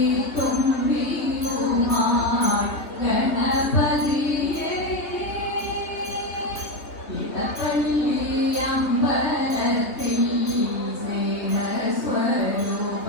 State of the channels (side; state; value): right; late; 3.0 ms